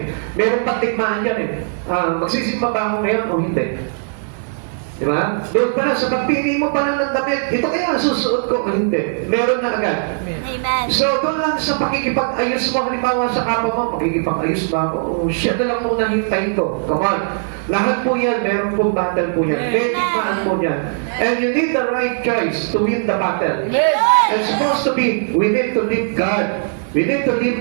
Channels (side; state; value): left; silent; 63 dB below the other